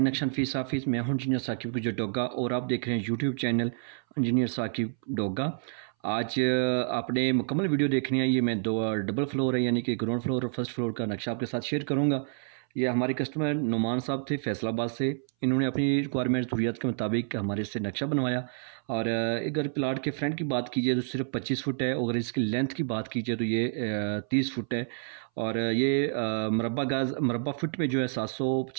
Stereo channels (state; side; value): silent; left; 59 dB below the other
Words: action fees office. मैं हूं इंजीनियर साकिब गुजर डोगा और आप देख रहे हैं YouTube channel engineer Saqib Doga. आज आपने मुकम्मल वीडियो देखनी है। ये मैं दो डबल फ्लोर है यानी कि ग्राउंड फ्लोर और फर्स्ट फ्लोर का नक्शा आपके साथ शेयर करूंगा। ये हमारे कस्टमर नुमान साहब थे फैसलाबाद से। इन्होंने अपनी रिक्वायरमेंट ज़रूरियात के मुताबिक हमारे से नक्शा बनवाया। और अगर प्लाट के फ्रंट की बात कीजिए तो सिर्फ 25 फुट है, और इसकी लेंथ की बात कीजिए तो ये 30 फुट है। और ये मरबा फुट में जो है